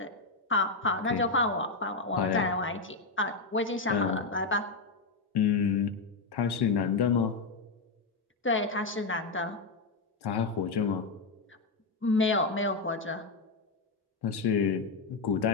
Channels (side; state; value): right; quieter; 3.9 dB